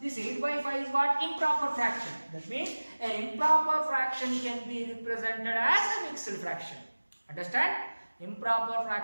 This 8 by 5 is what? Improper fraction. That means an improper fraction can be represented as a mixed fraction. Understand? Improper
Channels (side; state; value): both; inverted; correlation -1.00